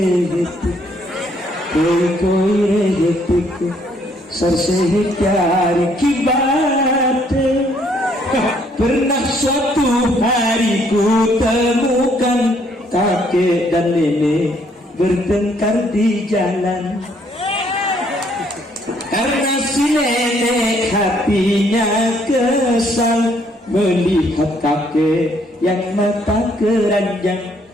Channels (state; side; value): normal; both; correlation 0.67